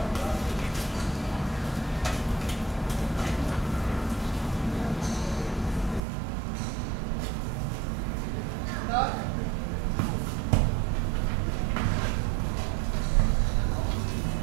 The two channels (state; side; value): drops out; left; at 6.0 s